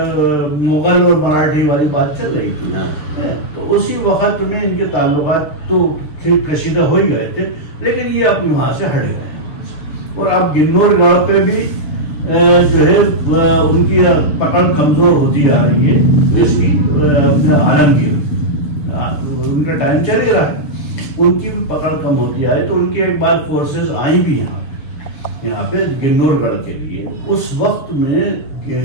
और मराठी वाली बात चल रही थी, तो उसी वक्त में इनके ताल्लुकात तो कशीदा हो ही गए थे, लेकिन ये अब वहां से हट गए। और अब गिन्नौरगढ़ पे भी जो है उनकी पकड़ कमजोर होती आ रही है, इसकी आलमगीर, उनका टाइम चल रहा है, उनकी भी पकड़ कम होती आई। तो उनकी एक बार फोर्सेस आई भी यहाँ, यहाँ पे गिन्नौरगढ़ के लिए। उस वक्त में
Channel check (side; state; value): right; late; 6.6 ms